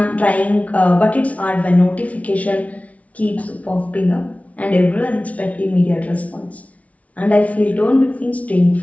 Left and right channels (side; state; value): right; late; 0.067 ms